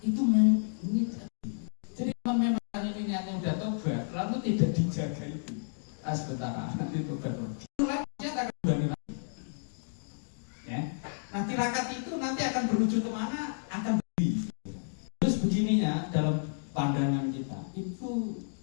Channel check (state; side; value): silent; right; digital silence